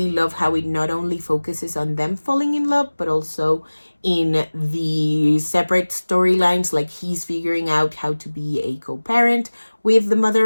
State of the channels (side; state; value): both; inverted; correlation -1.00